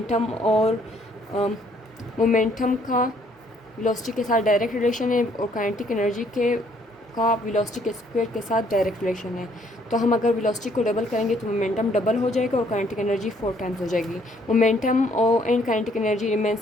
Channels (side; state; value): both; normal; correlation 0.65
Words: और मोमेंटम का वेलोसिटी के साथ डायरेक्ट रिलेशन है और काइनेटिक एनर्जी के का वेलोसिटी के स्क्वायर के साथ डायरेक्ट रिलेशन है। तो हम अगर वेलोसिटी को डबल करेंगे तो मोमेंटम डबल हो जाएगा और काइनेटिक एनर्जी 4 टाइम्स हो जाएगी। मोमेंटम और and kinetic energy remain